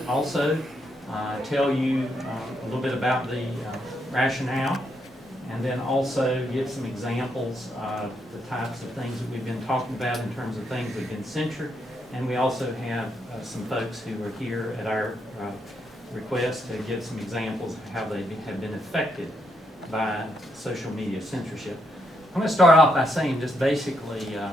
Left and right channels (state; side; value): normal; both; correlation 0.78